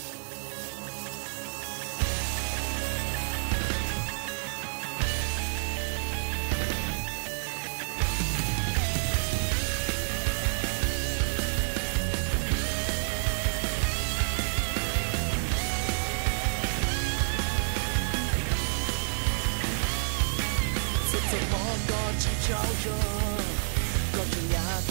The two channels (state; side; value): silent; left; 59 dB below the other